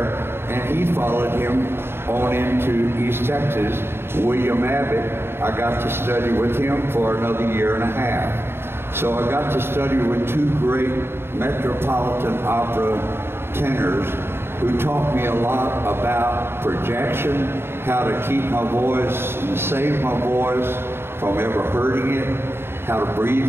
and he followed him on into East Texas. William Abbott, I got to study with him for another year and a half. So I got to study with two great Metropolitan Opera tenors who taught me a lot about projection, how to keep my voice and save my voice from ever hurting it, how to breathe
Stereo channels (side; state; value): left; late; 0.11 ms